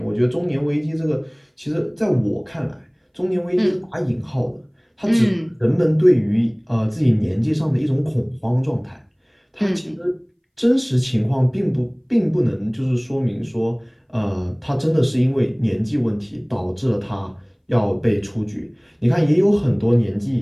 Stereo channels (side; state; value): both; identical; correlation 1.00